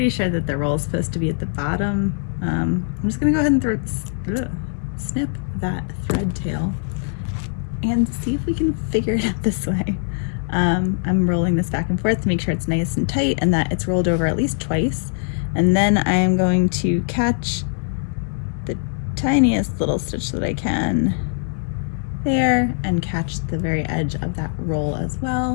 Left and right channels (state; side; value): silent; right; 63 dB below the other